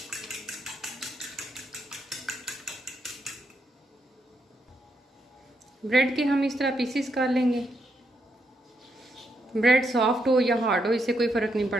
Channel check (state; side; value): normal; both; correlation 0.79